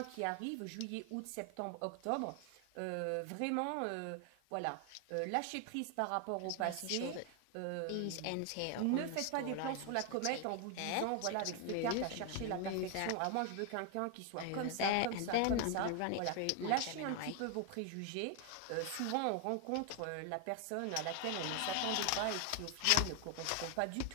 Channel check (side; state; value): both; different; correlation 0.01